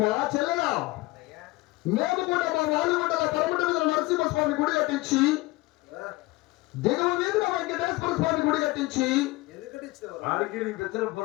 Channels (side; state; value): right; quieter; 20.9 dB